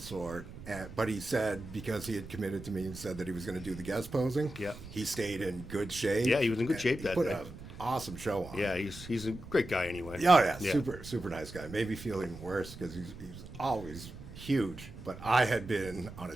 but he said, because he had committed to me and said that he was going to do the guest posing, he stayed in good shape. Yeah, he was in good shape that day. He day. put an awesome show on. Yeah, he's a great guy anyway. Yeah, super nice guy. Made me feel even worse because he's always huge, but I had been on a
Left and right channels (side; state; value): right; noise; rumble, 14 dB below the sound